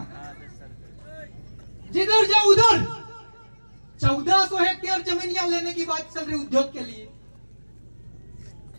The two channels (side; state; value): both; inverted; correlation -1.00